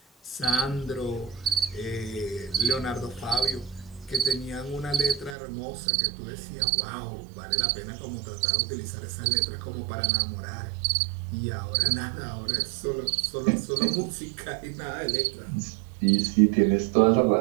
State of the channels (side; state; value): left; drops out; at 5.4 s